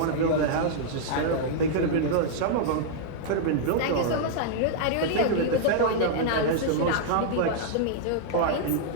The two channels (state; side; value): different; both; correlation -0.01